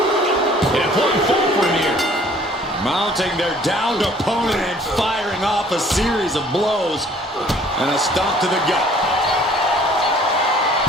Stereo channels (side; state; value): both; normal; correlation 0.55